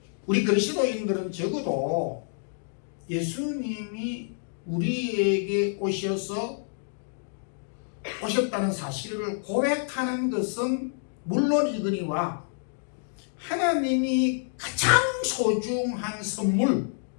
우리 그리스도인들은 적어도 예수님이 우리에게 오셨다는 사실을 고백하는 것은 물론이거니와 하나님이 가장 소중한 선물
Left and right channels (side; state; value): right; silent; 59 dB below the other